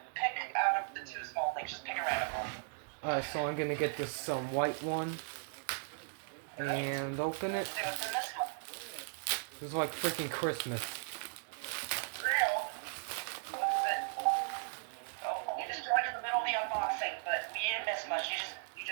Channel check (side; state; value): left; silent; digital silence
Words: out of the two small things, just pick a random one. Alright, so I'm gonna get this white one and open it. See what's in this one. This is like freaking Christmas. Real. What is it? Oh, you just joined in the middle of the unboxing, but we didn't miss much. You